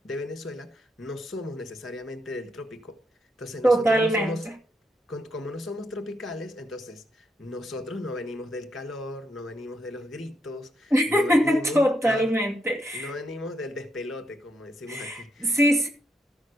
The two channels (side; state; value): both; normal; correlation 0.78